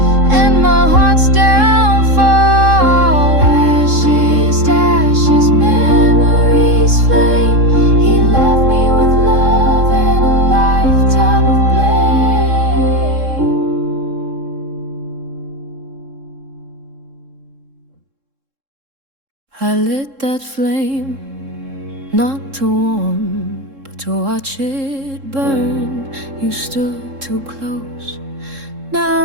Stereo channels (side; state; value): left; late; 3.7 ms